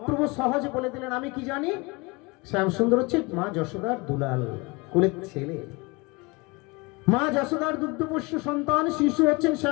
সহজে বলে দিলেন, আমি কি জানি, শ্যাম সুন্দর হচ্ছে মা যশোদার দুলাল, কুলের ছেলে। মা যশোদার দুগ্ধপোষ্য সন্তান শিশু হচ্ছেন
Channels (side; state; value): right; quieter; 26.3 dB